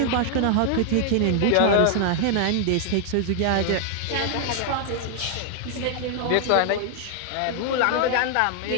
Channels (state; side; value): different; both; correlation 0.00